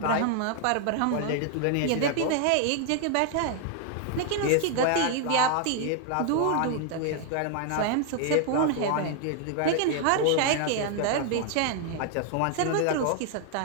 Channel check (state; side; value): different; both; correlation 0.00